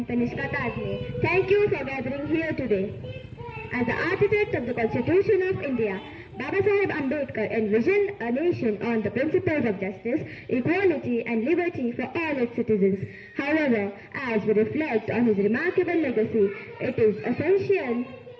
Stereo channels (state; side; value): identical; both; correlation 1.00